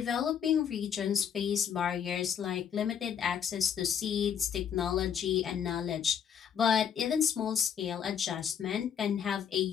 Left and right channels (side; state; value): right; quieter; 8.2 dB